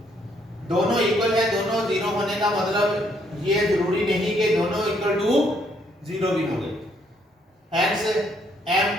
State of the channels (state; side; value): normal; both; correlation 0.69